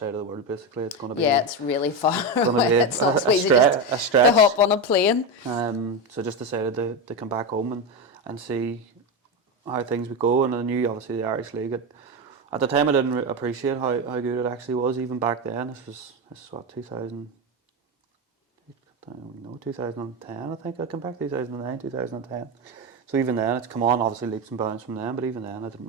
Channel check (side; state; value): both; normal; correlation 0.14